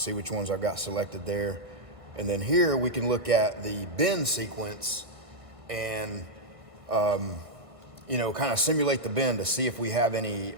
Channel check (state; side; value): late; left; 1.5 ms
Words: which ones I've got selected there. And then here we can look at the bend sequence and, you know, kind of simulate the bend to see if we have any